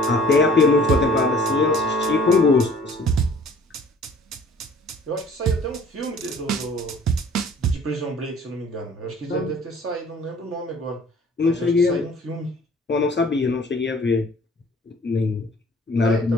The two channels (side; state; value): both; normal; correlation 0.52